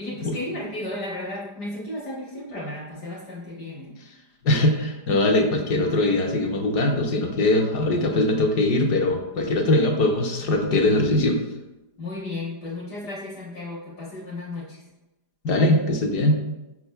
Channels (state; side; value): late; right; 4.9 ms